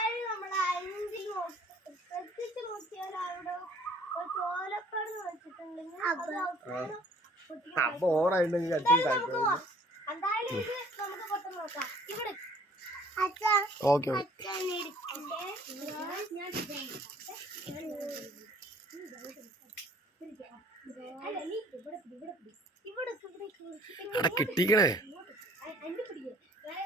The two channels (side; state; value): both; normal; correlation 0.56